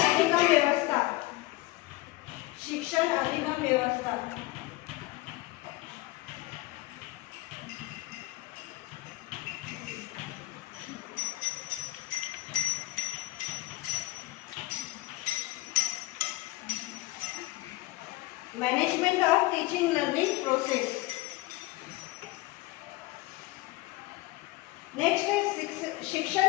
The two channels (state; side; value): quieter; right; 19.6 dB